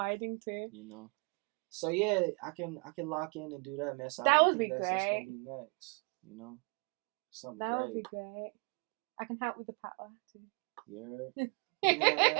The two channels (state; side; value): quieter; left; 34.5 dB